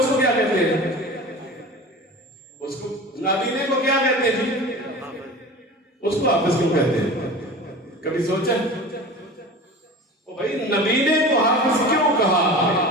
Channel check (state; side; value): normal; both; correlation 0.35